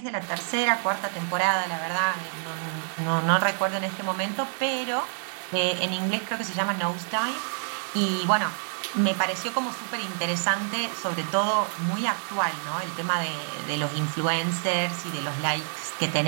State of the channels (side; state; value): left; silent; digital silence